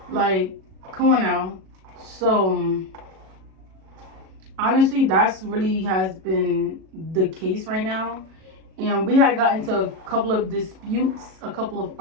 Like, come on now. So honestly, that's really has been the case right now. And we had gotten into a couple of disputes, a couple of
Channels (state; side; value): late; left; 37 ms